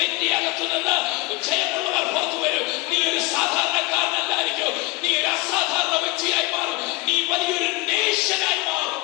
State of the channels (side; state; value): right; quieter; 23.3 dB